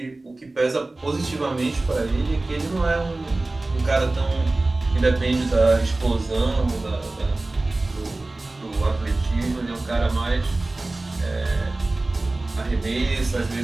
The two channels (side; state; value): left; quieter; 3.0 dB